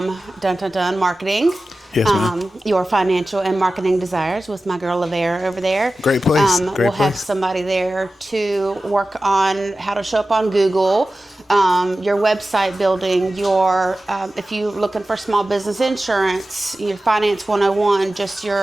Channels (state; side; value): normal; both; correlation 0.95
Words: Dun Dun Dun Marketing. Yes, ma'am. Your financial and marketing desires with my girl Lavera over there. Great place. We'll have somebody there to work on how to show up on Google, your website building, your if you're looking for small business insurance, your finance 101,